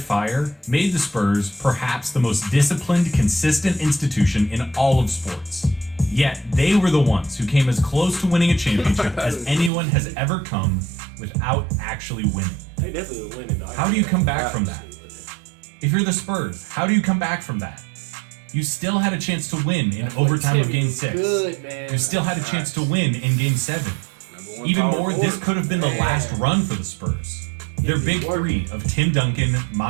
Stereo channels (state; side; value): drops out; left; at 9.7 s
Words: fire, made the Spurs perhaps the most disciplined, consistent institution in all of sports. Yet, they were the ones who came as close to winning a championship as anyone has ever come without actually winning. They definitely were winning, dog. How do you come back from that? If you're the Spurs, how do you come back from that? You still had a chance to win in overtime of Game 6. You still had a chance to win in Game 7. Even more, this could have been the last run for the Spurs. Their big 3 of Tim Duncan,